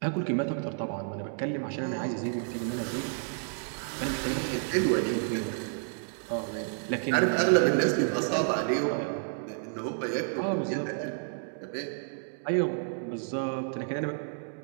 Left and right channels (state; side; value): silent; left; digital silence